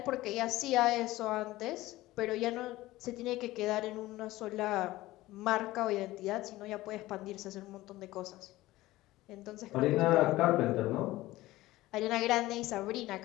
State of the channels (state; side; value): quieter; right; 17.6 dB